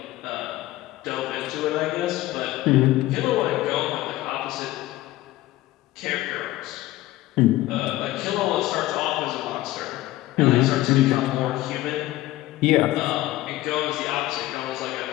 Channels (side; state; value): right; quieter; 16.6 dB